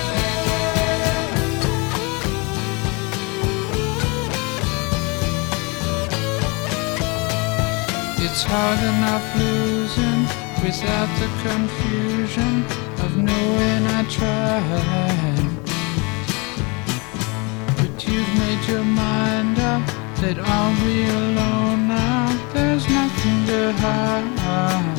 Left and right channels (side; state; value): right; quieter; 29.3 dB